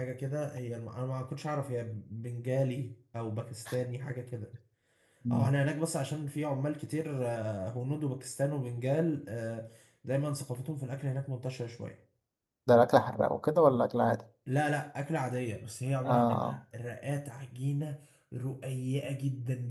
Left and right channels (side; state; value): both; identical; correlation 1.00